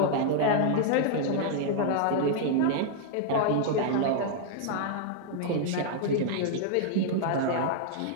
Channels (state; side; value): different; both; correlation -0.01